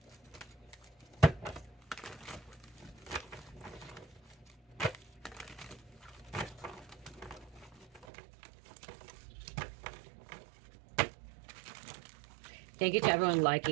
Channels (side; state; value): left; drops out; at 8.1 s